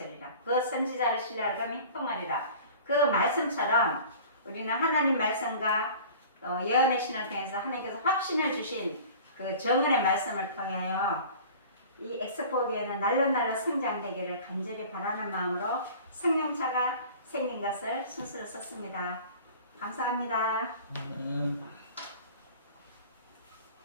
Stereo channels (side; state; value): both; inverted; correlation -0.42